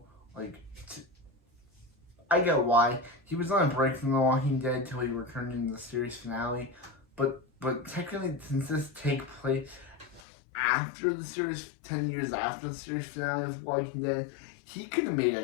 I get why. He was on a break from The Walking Dead till he returned in the series finale. But technically, since this takes place after the series, 10 years after the series finale of Walking Dead, he could have made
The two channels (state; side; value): drops out; right; at 10.2 s